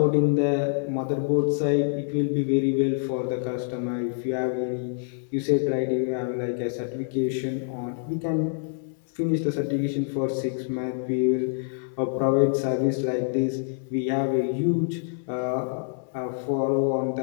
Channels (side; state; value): right; silent; 61 dB below the other